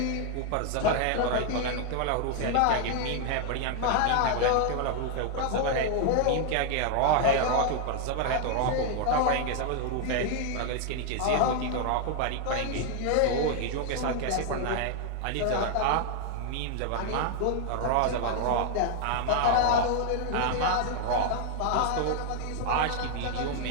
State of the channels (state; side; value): different; both; correlation 0.00